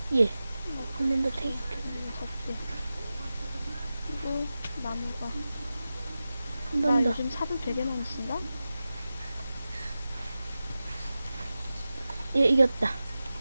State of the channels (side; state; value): both; inverted; correlation -0.94